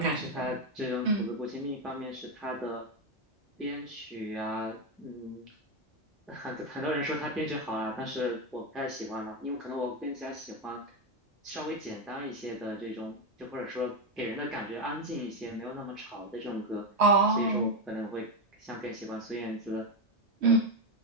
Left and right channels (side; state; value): both; normal; correlation 0.08